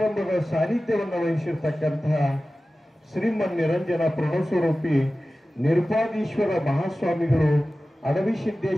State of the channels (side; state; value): both; normal; correlation 0.96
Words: ಸಾನ್ನಿಧ್ಯವನ್ನು ವಹಿಸಿರ್ತಕ್ಕಂತಹ ಶ್ರೀಮನ್ ನಿರಂಜನ ಪ್ರಣವಸ್ವರೂಪಿ ನಿರ್ಪಾದೀಶ್ವರ ಮಹಾಸ್ವಾಮಿಗಳು